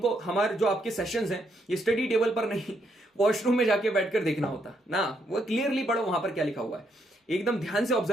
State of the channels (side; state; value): both; normal; correlation 0.75